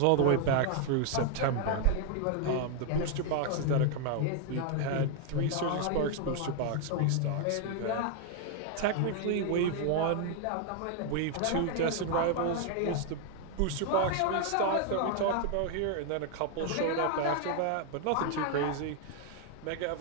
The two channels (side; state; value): both; different; correlation 0.00